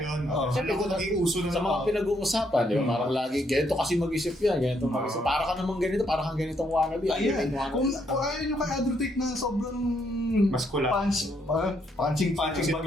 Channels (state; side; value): normal; both; correlation 0.74